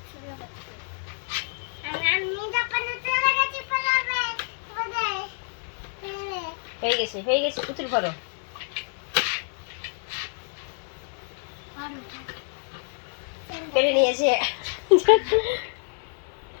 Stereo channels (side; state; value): right; silent; 55 dB below the other